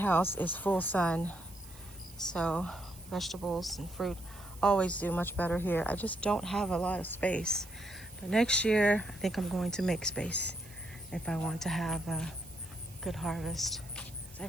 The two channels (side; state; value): right; noise; hiss, 20 dB below the sound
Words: is full sun, so vegetables and fruit always do much better here. I just don't have a lot of space. But next year, I think I'm going to make space if I want to have a good harvest.